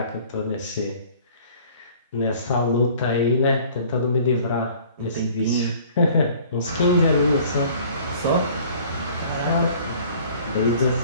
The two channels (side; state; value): both; inverted; correlation -0.51